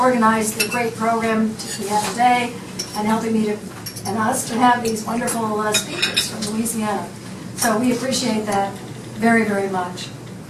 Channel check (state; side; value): identical; both; correlation 1.00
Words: the great program we have today and helping me and us to have these wonderful speakers from Louisiana. So we appreciate that very, very much.